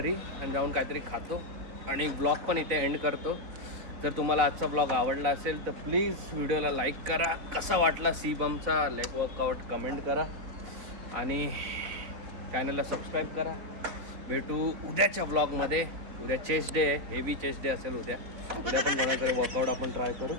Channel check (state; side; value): late; left; 4.0 ms